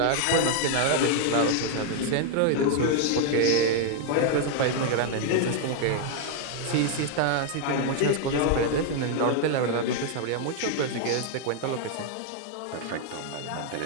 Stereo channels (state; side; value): different; both; correlation 0.00